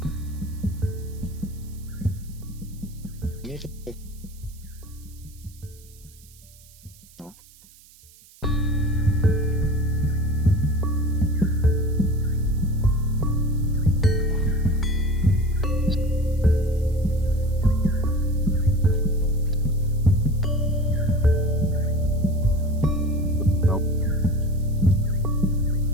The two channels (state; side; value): noise; right; hiss, 25 dB below the sound